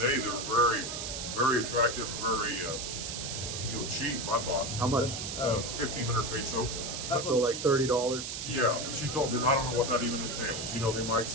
day. They're very, very attractive, very cheap. I thought how much? 1,500 peso. So like $30. Yeah, she told me I don't know what that even entails. You know, they might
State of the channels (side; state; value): right; noise; hiss, 5 dB below the sound